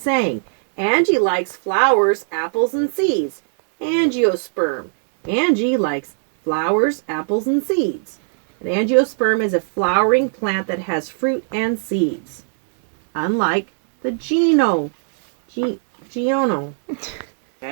Angie likes flowers, apples, and seeds. Angiosperm. Angie likes flowers, apples, and seeds. An angiosperm is a flowering plant that has fruit and seeds. Unlike the geono.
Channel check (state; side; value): silent; left; digital silence